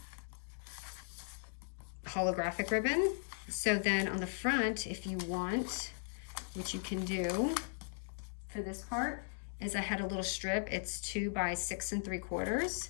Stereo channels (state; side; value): silent; right; digital silence